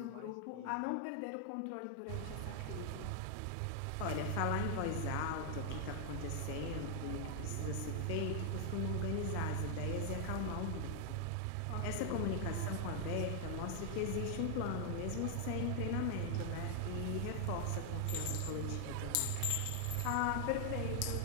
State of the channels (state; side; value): different; both; correlation 0.00